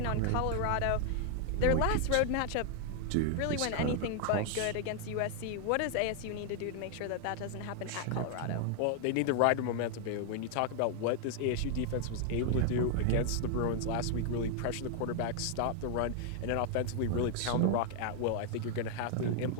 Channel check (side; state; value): both; different; correlation 0.00